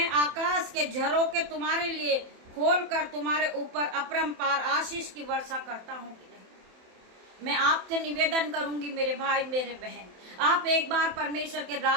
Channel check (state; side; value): late; left; 27 ms